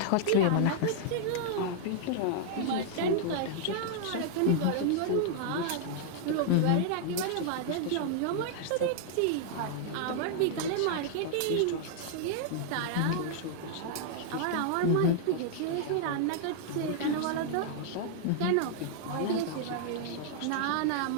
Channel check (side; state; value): both; different; correlation -0.01